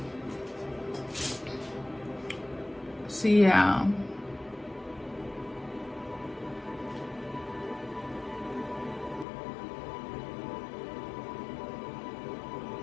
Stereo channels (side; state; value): right; drops out; at 9.2 s